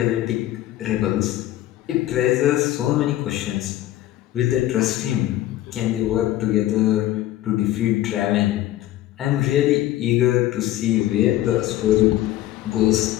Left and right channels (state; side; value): quieter; right; 14.3 dB